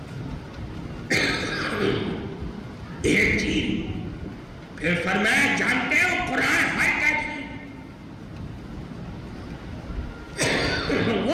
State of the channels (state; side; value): identical; both; correlation 1.00